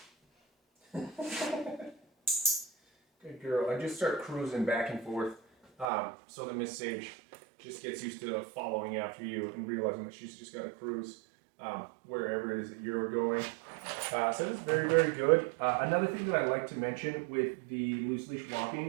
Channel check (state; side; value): drops out; left; at 5.9 s